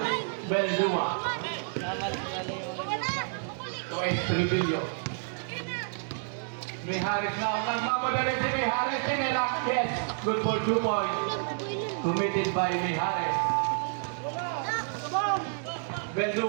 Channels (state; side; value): silent; left; digital silence